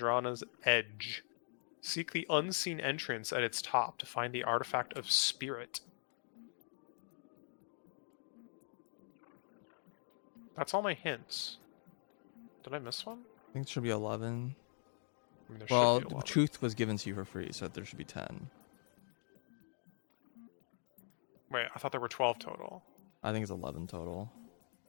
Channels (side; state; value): right; silent; digital silence